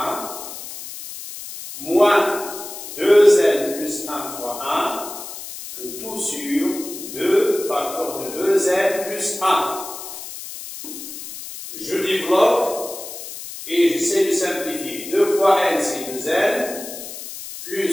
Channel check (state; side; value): noise; left; hiss, 11 dB below the sound